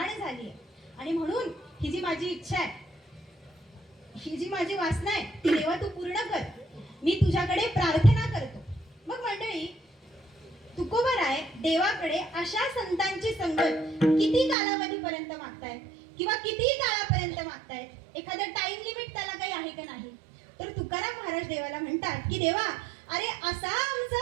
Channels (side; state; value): left; drops out; at 14.6 s